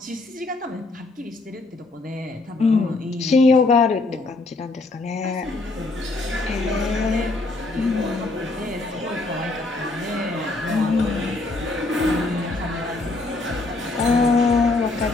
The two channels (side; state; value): right; quieter; 3.2 dB